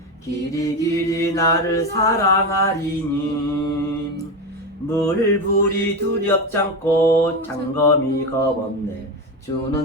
길이 길이 나를 사랑하리니 물불이 두렵지 않고 장검이 겁없네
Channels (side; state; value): both; normal; correlation 0.17